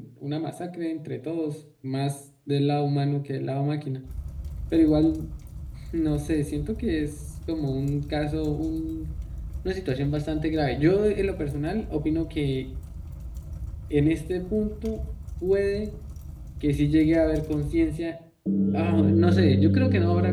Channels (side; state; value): both; identical; correlation 1.00